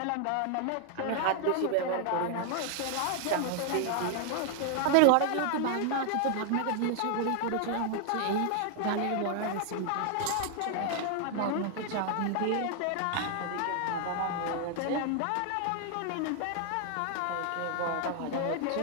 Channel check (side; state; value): both; different; correlation 0.00